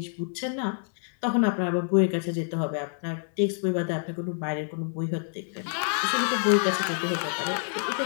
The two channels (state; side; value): silent; right; 60 dB below the other